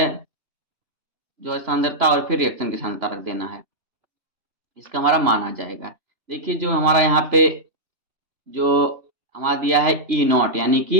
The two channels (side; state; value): left; late; 3.0 ms